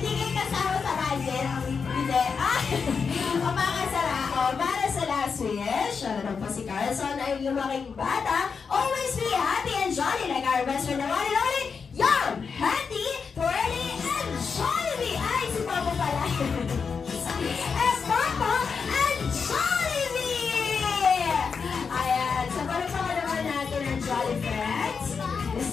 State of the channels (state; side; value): quieter; right; 5.6 dB